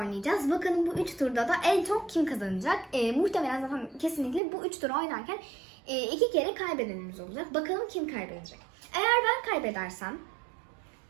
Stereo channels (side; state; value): left; drops out; at 4.4 s